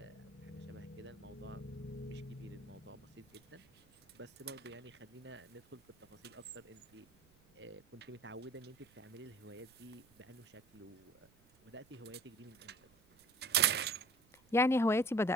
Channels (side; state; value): right; noise; rumble, 30 dB below the sound